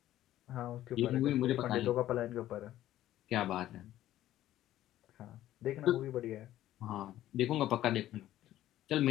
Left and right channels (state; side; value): quieter; right; 13.5 dB